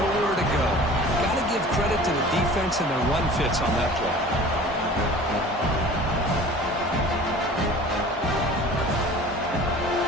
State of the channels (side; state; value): both; normal; correlation 0.43